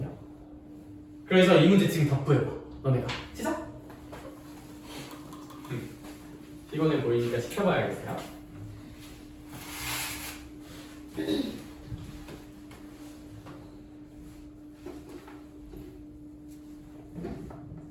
그래서 이 문제 지금 답부해봐. 너네가 시작. 피곤해 보이니까 시켜봐야겠어요.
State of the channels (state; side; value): identical; both; correlation 1.00